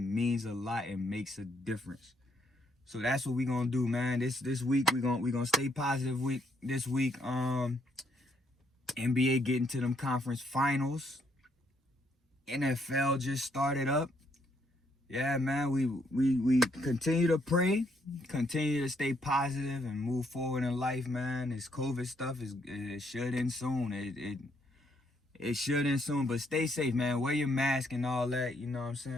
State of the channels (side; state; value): both; normal; correlation 0.72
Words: a lot and makes a difference. So that's what we gonna do, man. This week we gonna stay positive. This week, NBA getting to them conference finals. NFL just started up. Yeah, man. We continue to pray, continue to stay positive and move forward in life, man. This COVID stuff it should end soon. It should end soon, but stay safe, man. Wear your mask and all that. You know what I'm